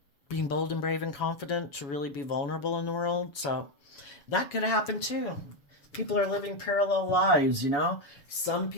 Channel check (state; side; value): late; right; 7.1 ms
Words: being bold and brave and confident to really be vulnerable in the world. So that could happen too. People are living parallel lives, you know? Some